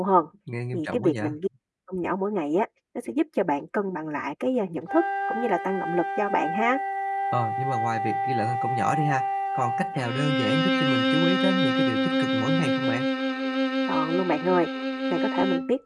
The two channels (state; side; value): identical; both; correlation 1.00